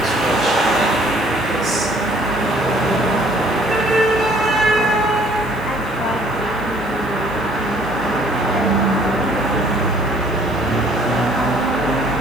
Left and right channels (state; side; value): noise; left; hiss, 25 dB below the sound